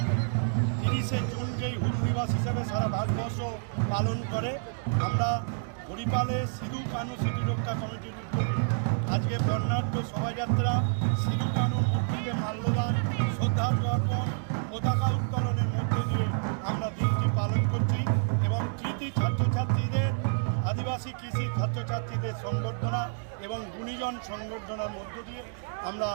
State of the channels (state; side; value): silent; left; digital silence